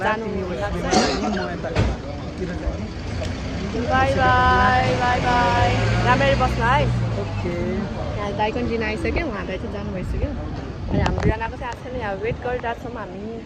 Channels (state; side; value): identical; both; correlation 1.00